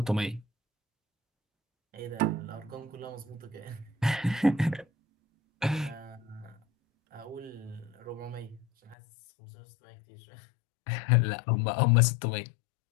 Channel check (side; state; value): right; drops out; at 9.0 s